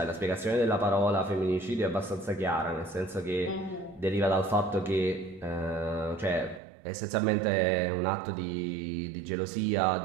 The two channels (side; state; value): left; drops out; at 6.6 s